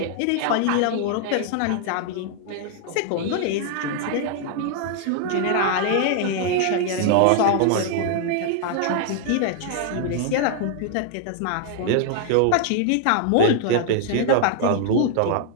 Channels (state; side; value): different; both; correlation 0.00